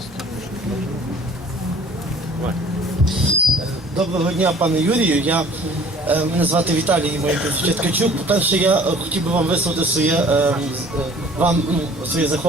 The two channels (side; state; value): both; normal; correlation 0.51